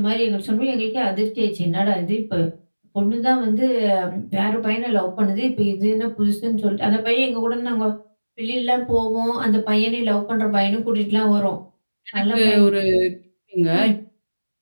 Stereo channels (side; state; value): both; inverted; correlation -1.00